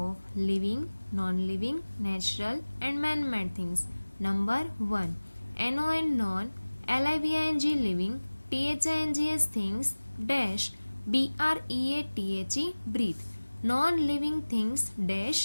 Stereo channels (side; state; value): both; inverted; correlation -1.00